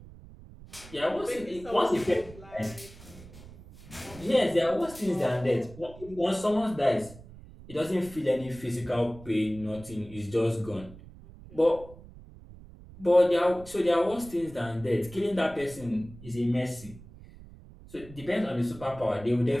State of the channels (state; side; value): noise; right; rumble, 18 dB below the sound